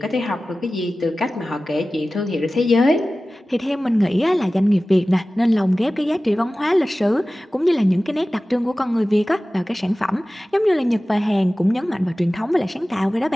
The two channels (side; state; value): both; normal; correlation 0.96